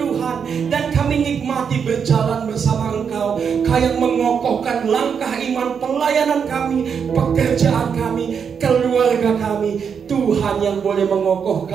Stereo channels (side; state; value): left; quieter; 6.8 dB